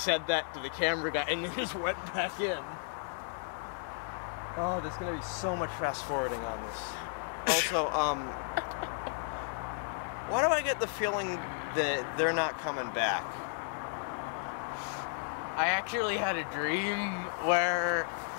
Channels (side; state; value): right; silent; digital silence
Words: that to the camera guy, and then just went back in. Oh, there's gonna be so much fast forwarding on this. Also, why do I get the feeling that they're not coming back? I actually had a dream where